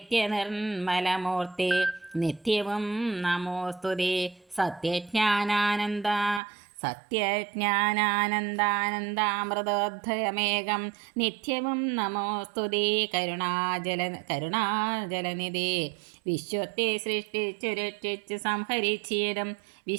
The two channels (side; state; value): left; drops out; at 6.4 s